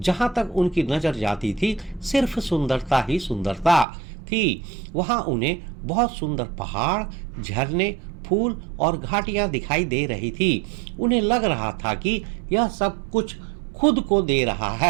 तक उनकी नजर जाती थी सिर्फ सुंदरता ही सुंदरता थी। वहां उन्हें बहुत सुंदर पहाड़, झरने, फूल और घाटियां दिखाई दे रही थी। उन्हें लग रहा था कि यह सब कुछ खुद को दे रहा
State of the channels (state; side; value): drops out; left; at 3.9 s